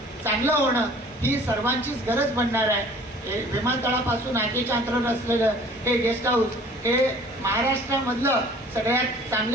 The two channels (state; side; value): normal; both; correlation 0.50